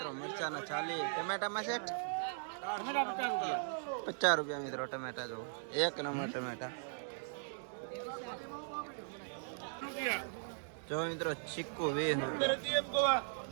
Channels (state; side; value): silent; left; digital silence